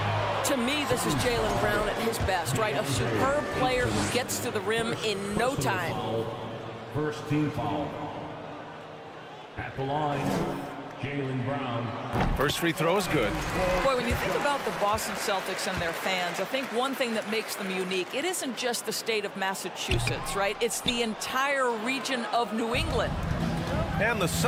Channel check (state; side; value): identical; both; correlation 1.00